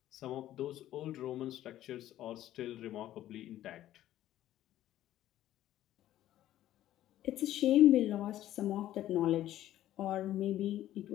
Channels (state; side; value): quieter; right; 13.2 dB